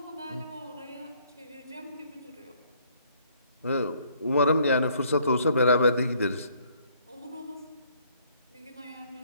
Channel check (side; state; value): both; inverted; correlation -0.64